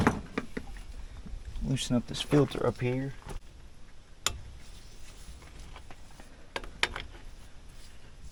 loosen up this filter up here.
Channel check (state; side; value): identical; both; correlation 1.00